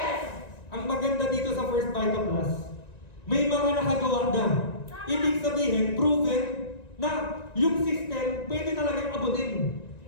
Ang maganda dito sa First Vita Plus, may mga nakagawa na. Ibig sabihin, proven na yung system pwede talagang abutin.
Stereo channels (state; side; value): late; right; 1.9 ms